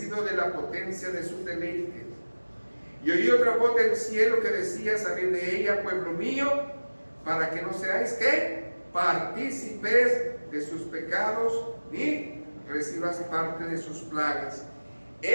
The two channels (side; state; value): both; inverted; correlation -1.00